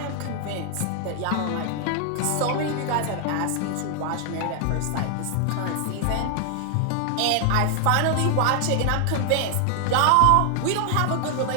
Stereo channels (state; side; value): different; both; correlation 0.00